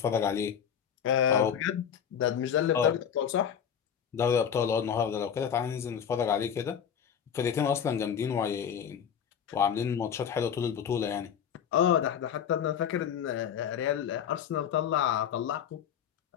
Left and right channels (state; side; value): quieter; right; 8.2 dB